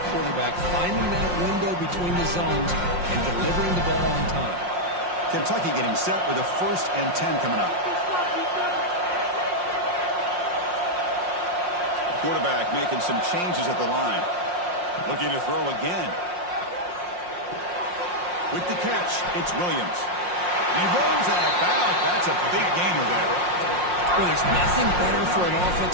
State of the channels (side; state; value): left; late; 5.6 ms